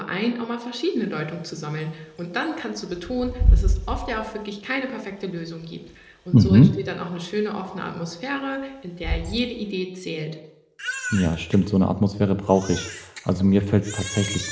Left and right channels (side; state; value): both; identical; correlation 1.00